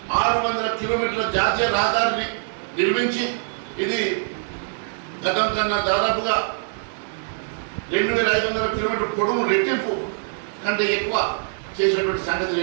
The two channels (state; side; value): silent; left; digital silence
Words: కిలోమీటర్ల జాతీయ రహదారిని నిర్మించి ఇది గతం కన్నా దాదాపుగా 2,500 కిలోమీటర్ పొడవు రెట్టింపు కంటే ఎక్కువ చేసినటువంటి సంగతి